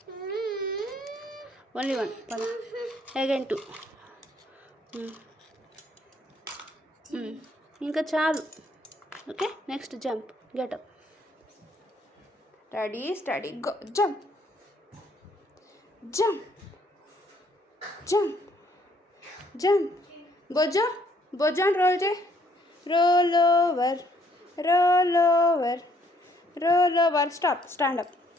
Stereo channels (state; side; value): normal; both; correlation 0.66